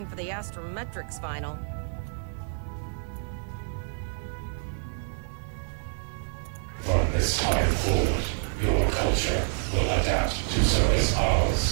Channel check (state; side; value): silent; left; digital silence